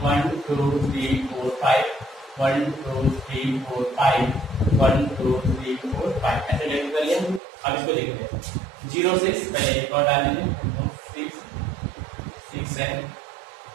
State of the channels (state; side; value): drops out; left; at 7.4 s